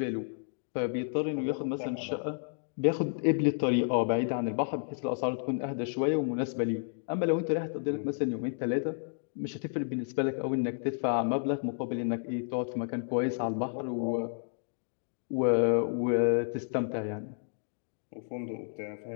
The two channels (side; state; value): right; silent; digital silence